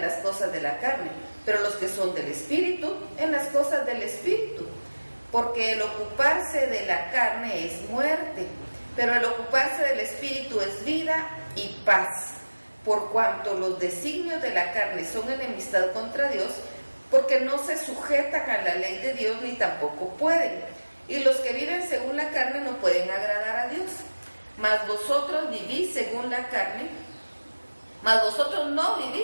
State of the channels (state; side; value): inverted; both; correlation -1.00